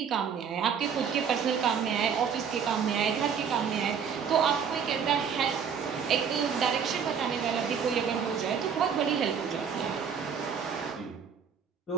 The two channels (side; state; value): left; quieter; 7.1 dB